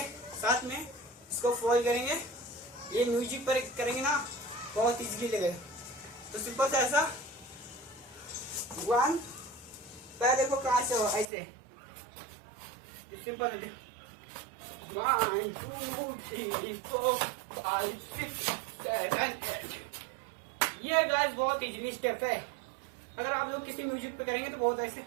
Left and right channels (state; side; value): drops out; left; at 11.2 s